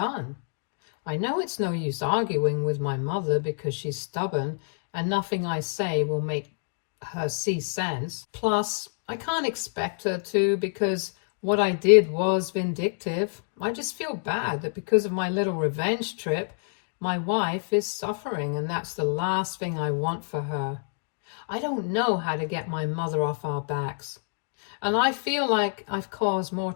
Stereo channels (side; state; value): right; silent; 60 dB below the other